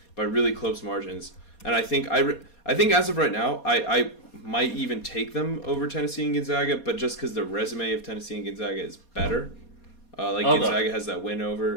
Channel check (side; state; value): right; late; 4.2 ms